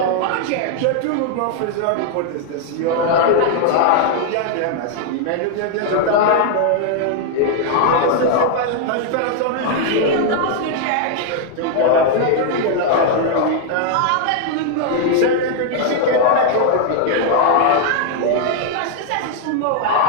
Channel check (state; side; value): different; both; correlation 0.00